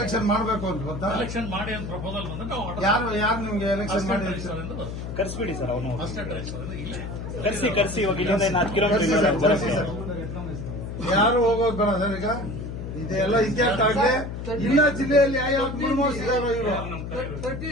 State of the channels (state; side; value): noise; left; hum, 7 dB below the sound